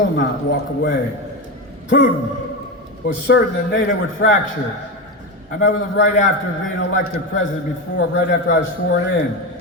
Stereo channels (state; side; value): normal; both; correlation 0.17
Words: walk away. Putin was certain that NATO would fracture. I met with him right after being elected president right after I was sworn in.